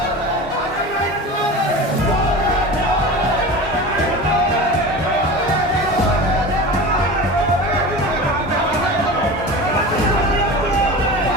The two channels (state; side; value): normal; both; correlation 0.32